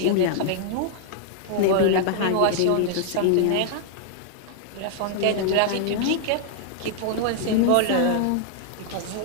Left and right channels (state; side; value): different; both; correlation -0.01